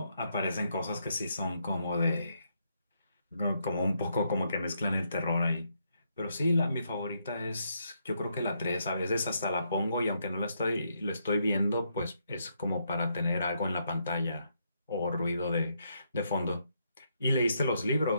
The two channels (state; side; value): inverted; both; correlation -0.77